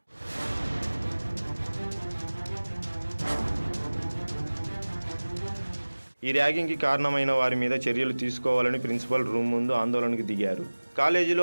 ఈ ర్యాగింగ్కి కారణమైన వారి మీద చర్యలు తీసుకోవాలని ప్రిన్సిపల్ రూమ్ ముందు ఆందోళనకు దిగారు. కాలేజీలో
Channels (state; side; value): inverted; both; correlation -1.00